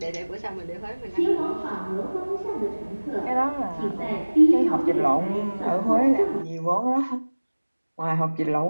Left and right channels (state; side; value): inverted; both; correlation -1.00